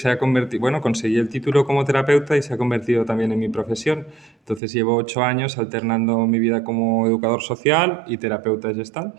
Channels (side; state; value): left; drops out; at 4.6 s